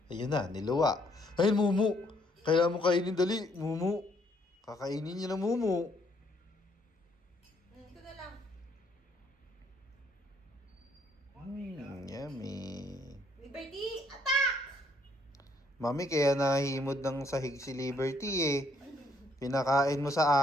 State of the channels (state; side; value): normal; both; correlation 0.68